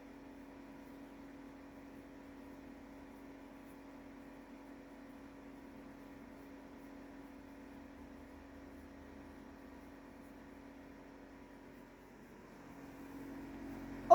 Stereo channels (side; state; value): both; identical; correlation 1.00